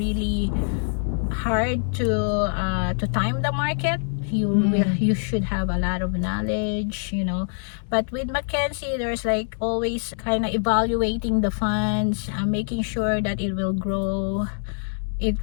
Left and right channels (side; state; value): right; silent; digital silence